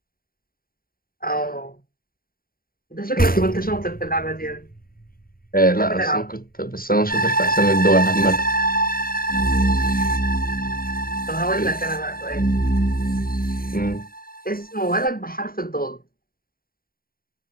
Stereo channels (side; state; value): right; late; 0.43 ms